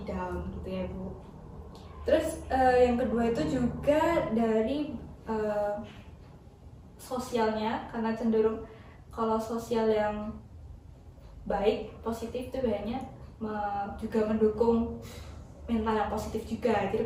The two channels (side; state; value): both; identical; correlation 1.00